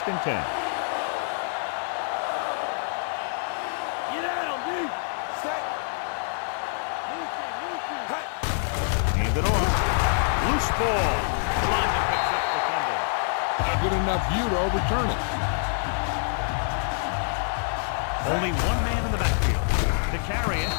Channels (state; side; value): silent; right; 61 dB below the other